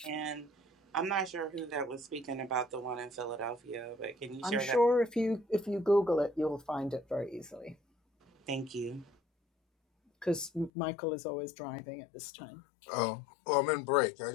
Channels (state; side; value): drops out; right; at 10.7 s